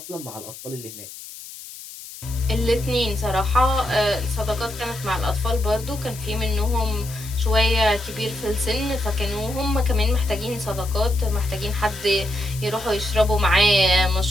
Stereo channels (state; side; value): noise; left; hiss, 14 dB below the sound